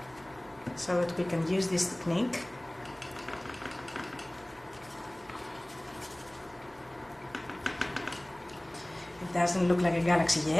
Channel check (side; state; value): right; noise; hum, 27 dB below the sound